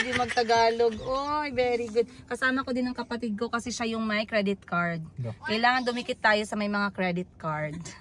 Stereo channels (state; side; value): identical; both; correlation 1.00